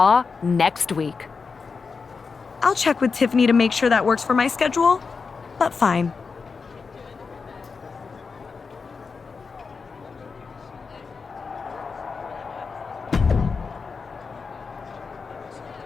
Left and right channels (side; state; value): right; quieter; 5.0 dB